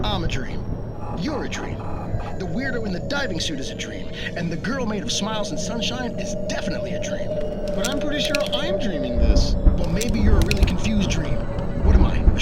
I'm a dream. You're a dream. The weirdo in the diving suit is a dream, and the girl made of smiles and sunshine is definitely a dream. But I'm pretty sure I'm dreaming this. Well, maybe you're a really confused dream. What am I, a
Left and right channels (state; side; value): identical; both; correlation 1.00